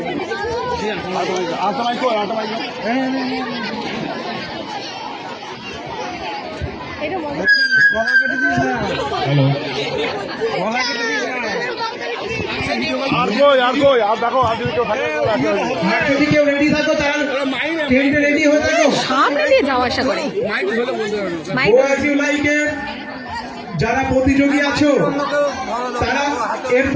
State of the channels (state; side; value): identical; both; correlation 1.00